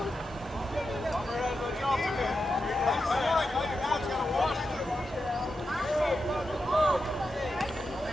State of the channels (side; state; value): both; normal; correlation 0.88